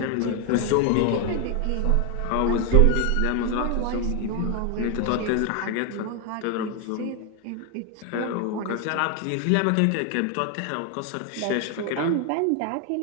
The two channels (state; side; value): different; both; correlation 0.01